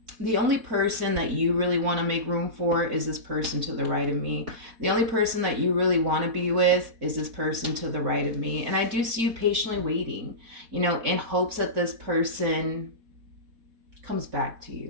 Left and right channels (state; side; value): late; left; 4.1 ms